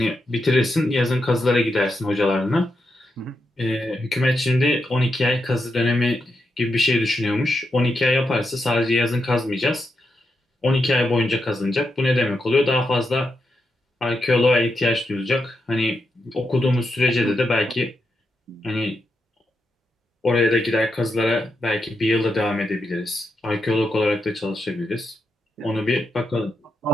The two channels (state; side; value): normal; both; correlation 0.84